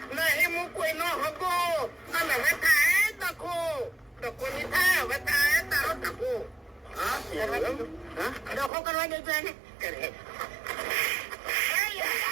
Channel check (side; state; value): left; drops out; at 8.7 s